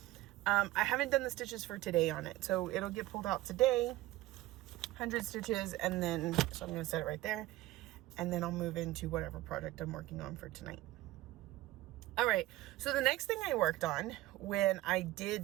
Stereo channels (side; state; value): left; quieter; 16.7 dB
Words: I haven't done the stitches for today on it, so it'll get pulled out today, 100 stitches, and then, so I'm going to set it right there, and then I'll move into whatever project I'm working on for tonight. All right, so the next thing I worked on when I